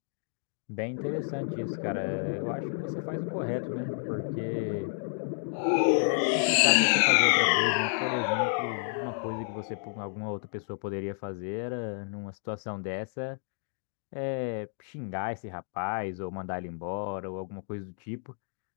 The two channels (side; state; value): right; silent; digital silence